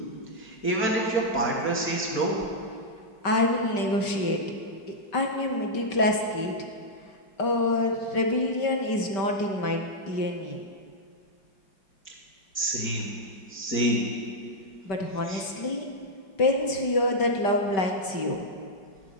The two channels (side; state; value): right; late; 5.2 ms